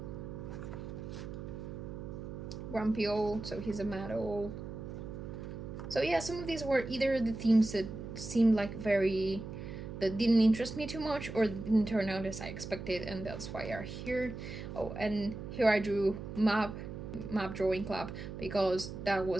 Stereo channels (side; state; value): right; noise; hum, 8 dB below the sound